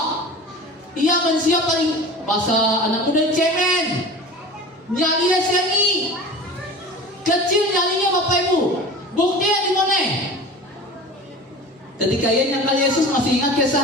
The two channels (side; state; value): both; normal; correlation 0.37